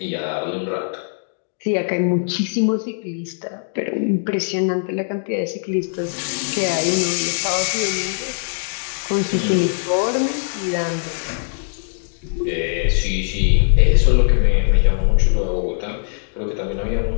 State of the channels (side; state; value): right; silent; 65 dB below the other